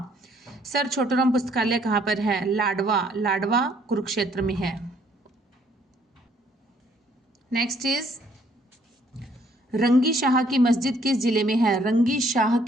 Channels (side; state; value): both; normal; correlation 0.64